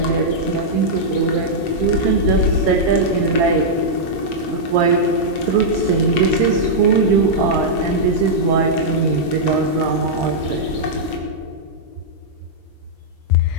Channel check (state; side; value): late; right; 7.6 ms